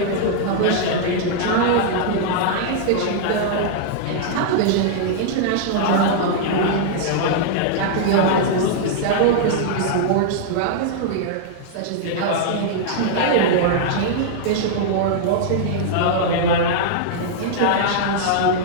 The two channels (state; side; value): different; both; correlation -0.01